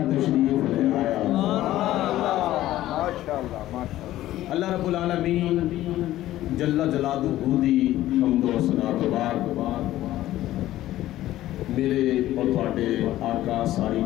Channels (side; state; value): right; quieter; 14.5 dB